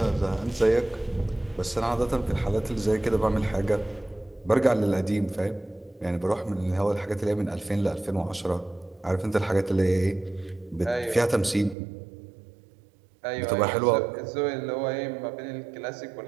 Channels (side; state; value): left; drops out; at 11.8 s